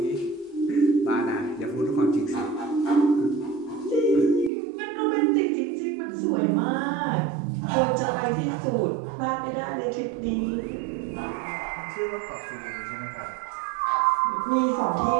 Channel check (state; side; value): drops out; left; at 4.5 s